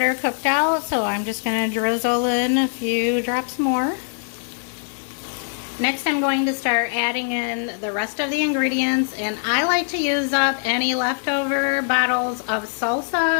cooked out, so I'm just going to drizzle in a few drops more. Next, I'm going to start adding in the rest of the ingredients, and I like to use up any leftover bottles of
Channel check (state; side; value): silent; right; 63 dB below the other